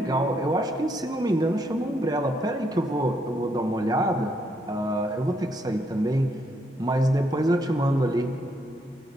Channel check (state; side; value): normal; both; correlation 0.75